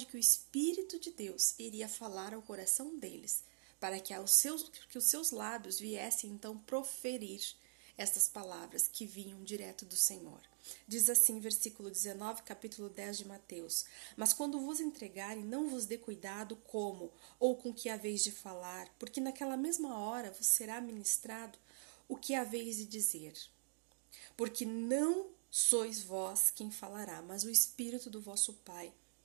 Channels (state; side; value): silent; left; digital silence